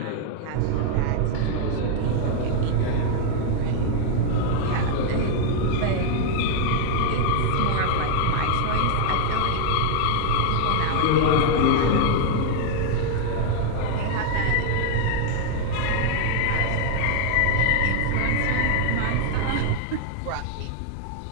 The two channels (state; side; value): different; both; correlation 0.00